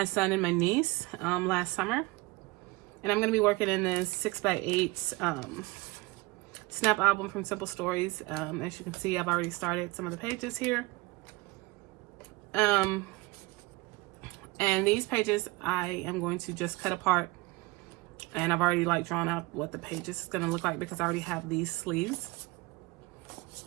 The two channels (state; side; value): quieter; left; 23.1 dB